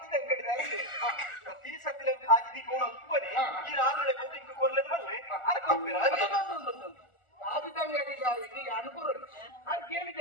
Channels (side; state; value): right; late; 1.4 ms